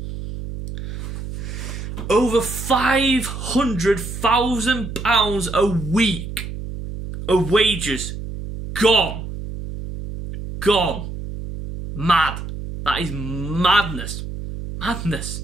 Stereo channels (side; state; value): right; noise; hum, 8 dB below the sound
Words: Over £500,000 a week of wages gone. Gone. Mad. That is madness. Madness.